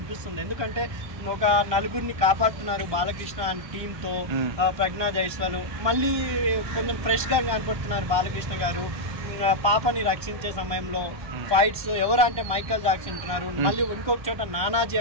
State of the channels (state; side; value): late; left; 1.2 ms